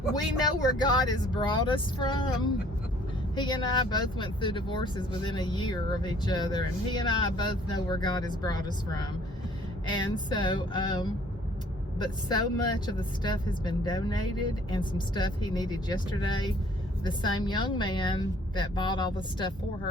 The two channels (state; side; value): normal; both; correlation 0.57